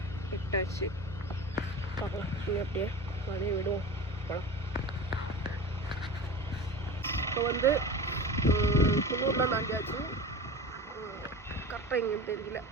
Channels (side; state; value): both; normal; correlation 0.32